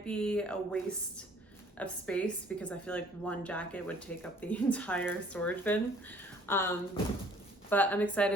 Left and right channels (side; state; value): both; normal; correlation 0.56